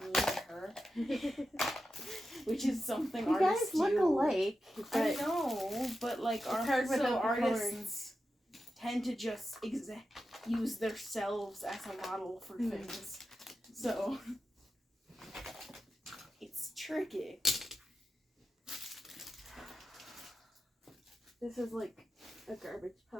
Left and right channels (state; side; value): normal; both; correlation 0.90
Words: than her, which is something You artists guys look do. alike, I but know, but like hard without the artists tend to just use themselves as a model for things. So it's tricky. this is like a garbage